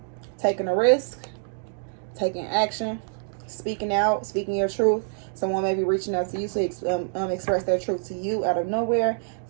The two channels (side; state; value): left; silent; digital silence